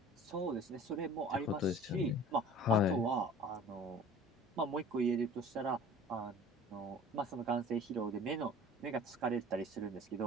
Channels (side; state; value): both; normal; correlation 0.44